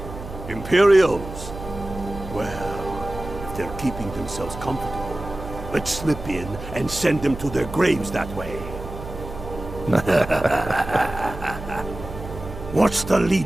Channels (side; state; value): right; noise; hum, 11 dB below the sound